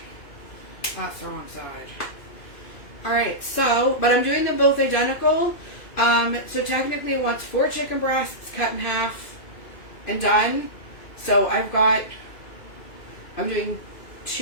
That's the wrong side. Alright, so, but I'm doing them both identical. So technically it wants 4 chicken breasts cut in half and done. So I'm doing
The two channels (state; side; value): late; right; 2.5 ms